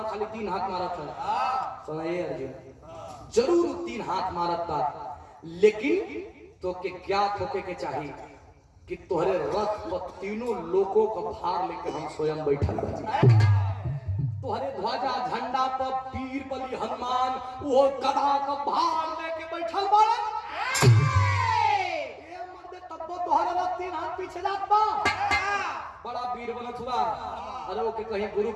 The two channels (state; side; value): identical; both; correlation 1.00